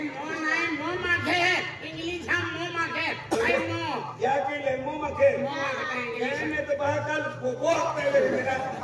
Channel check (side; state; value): both; identical; correlation 1.00